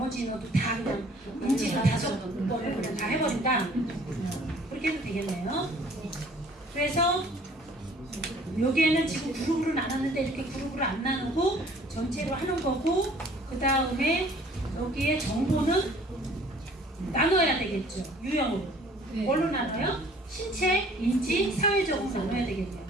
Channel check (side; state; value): both; normal; correlation 0.54